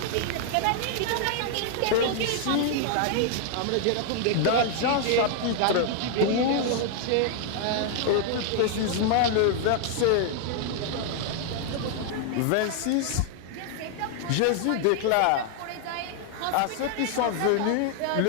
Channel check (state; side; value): different; both; correlation 0.00